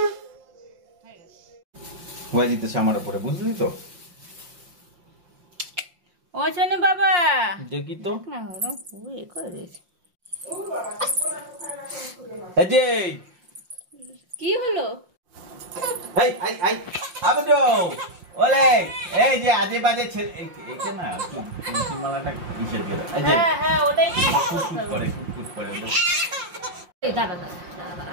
হয়ে যেতেছে আমার উপরে, বুঝলি তো? ও শোনো বাবা, দেখি তো না ওরা পুরো এ করে দিয়েছে। এই যে কি হলো? এই আই আই আবদো ওলে, এই যে আজে বাজে ছেলে এইটা না কি মালাটা কিসের দিয়ে দাও? এই যে হ্যাঁ হ্যাঁ, ওটাই কুট করে ওটা। এই দাঁড়া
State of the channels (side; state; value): left; late; 5.7 ms